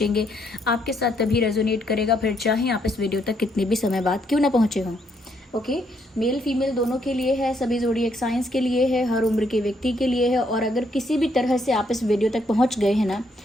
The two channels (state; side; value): normal; both; correlation 0.72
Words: आपके साथ तभी रेजोनेट करेगा, फिर चाहे आप इस वीडियो तक कितने भी समय बाद क्यों ना पहुँचे हों। ओके, मेल फीमेल दोनों के लिए है, सभी ज़ोडिएक साइंस के लिए है, हर उम्र के व्यक्ति के लिए है। और अगर किसी भी तरह से आप इस वीडियो तक पहुंच गए हैं ना,